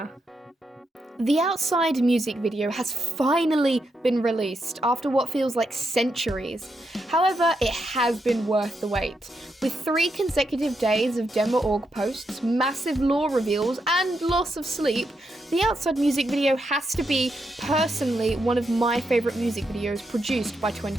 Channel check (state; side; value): normal; both; correlation 0.82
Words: The Outside music video has finally been released after what feels like centuries. However, it has been worth the wait. With 3 consecutive days of dmaorg posts, massive lore reveals, and loss of sleep, the Outside music video has to be, personally, one of my favourite music videos produced by